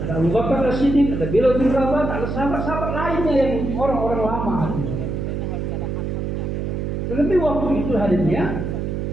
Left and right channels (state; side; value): noise; right; hum, 3 dB below the sound